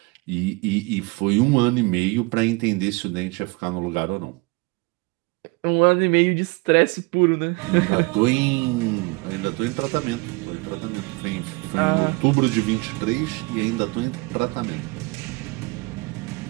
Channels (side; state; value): left; quieter; 26.5 dB